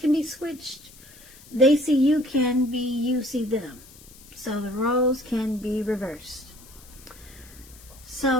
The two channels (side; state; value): left; noise; hiss, 22 dB below the sound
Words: be switched. They see you can be you see them. So the roles can be reversed.